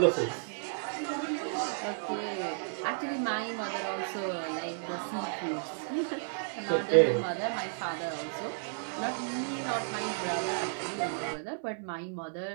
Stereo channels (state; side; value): silent; left; 56 dB below the other